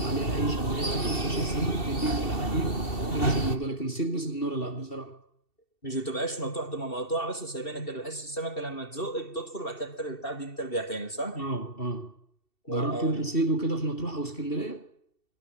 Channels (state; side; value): late; right; 2.7 ms